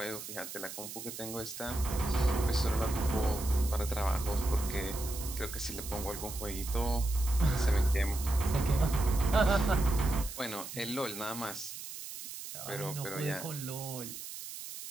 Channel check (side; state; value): right; noise; hiss, 10 dB below the sound